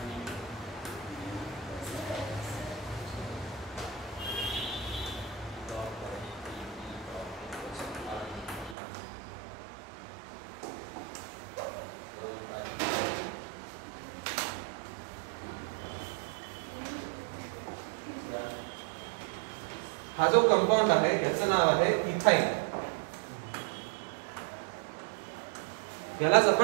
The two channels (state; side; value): drops out; left; at 8.8 s